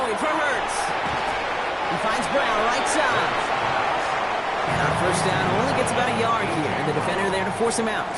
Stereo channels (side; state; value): both; identical; correlation 1.00